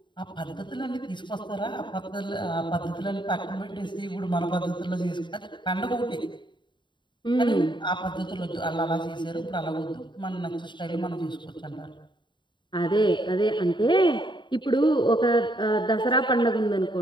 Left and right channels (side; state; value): right; late; 0.23 ms